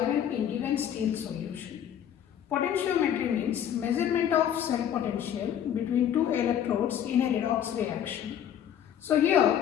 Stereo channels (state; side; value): quieter; right; 9.8 dB